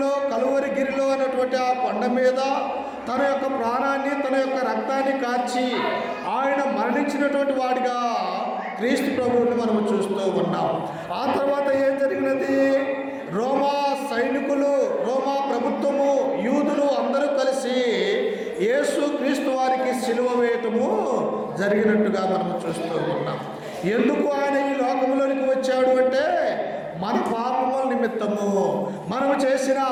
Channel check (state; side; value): identical; both; correlation 1.00